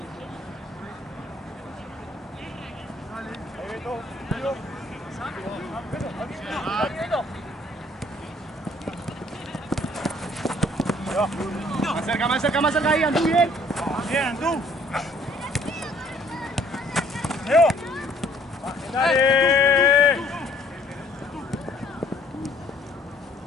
Más cerca ahí, Andú, bien. Bien, Andú. Leo. Dale.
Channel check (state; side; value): normal; both; correlation 0.60